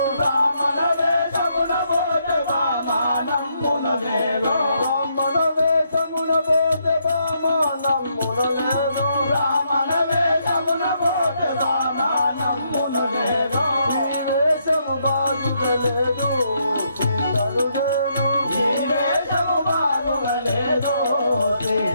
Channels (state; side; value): inverted; both; correlation -0.75